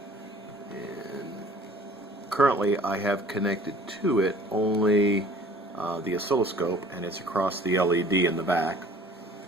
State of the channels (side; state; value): both; normal; correlation 0.50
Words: And currently I have connected to it only the oscilloscope, and it's across the LED in the back.